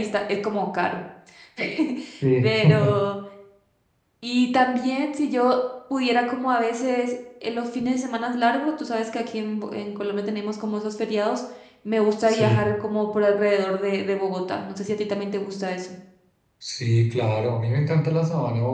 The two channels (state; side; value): identical; both; correlation 1.00